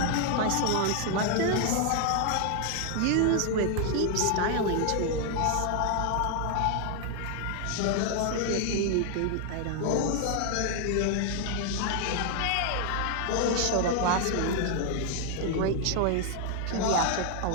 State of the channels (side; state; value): both; different; correlation 0.00